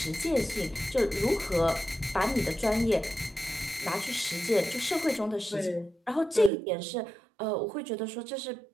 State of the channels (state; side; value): drops out; left; at 6.5 s